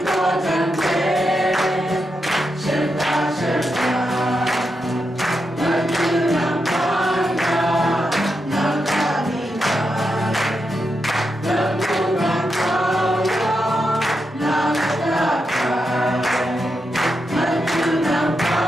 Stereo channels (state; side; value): normal; both; correlation 0.85